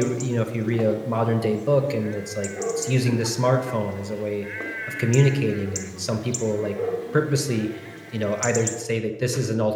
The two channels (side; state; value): both; identical; correlation 1.00